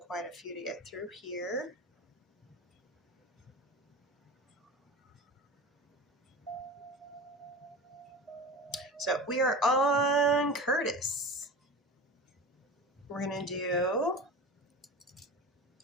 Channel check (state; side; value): normal; both; correlation 0.31